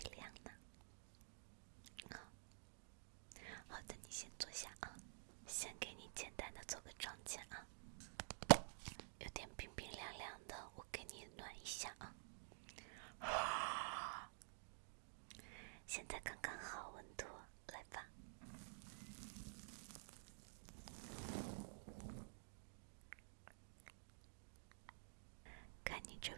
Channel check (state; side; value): silent; left; digital silence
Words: 亮呢。好的，你先坐下啊，先给你简单的做个妆前啊，有点冰冰凉凉的，我给你暖一下啊。现在刚刚好温度，来吧。看你这